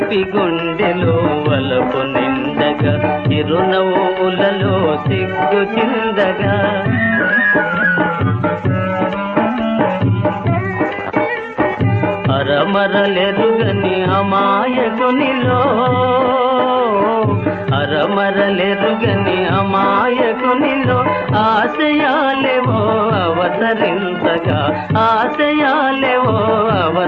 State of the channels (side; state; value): both; identical; correlation 1.00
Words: గుండెలో వలపు నిండగా చిరునవ్వులలో సిగ్గు చిందగా అరమరలెరుగని అమాయకునిలో అరమరలెరుగని అమాయకునిలో ఆశయాలేవో అవతరించగా ఆశయాలేవో